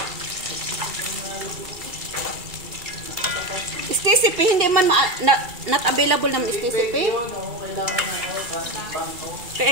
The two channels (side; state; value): left; late; 2.3 ms